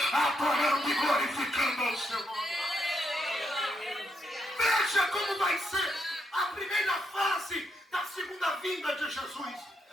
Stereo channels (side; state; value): both; normal; correlation 0.79